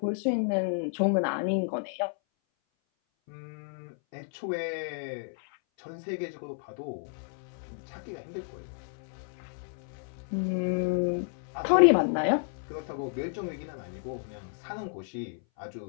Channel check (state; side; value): silent; right; 57 dB below the other